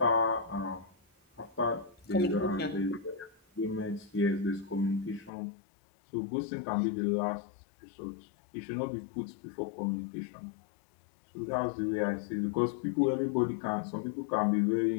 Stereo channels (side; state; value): right; drops out; at 5.3 s